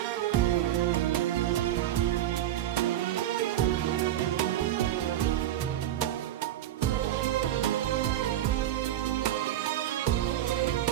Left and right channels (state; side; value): quieter; left; 12.3 dB